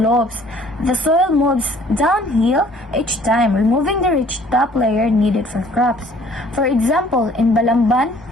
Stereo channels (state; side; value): normal; both; correlation 0.56